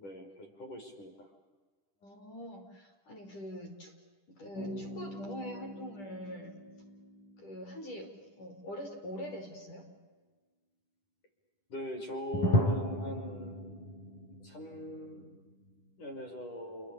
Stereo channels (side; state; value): right; late; 10 ms